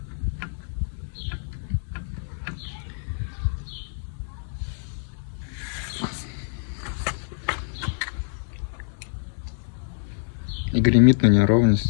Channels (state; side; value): silent; right; digital silence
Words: И гремит на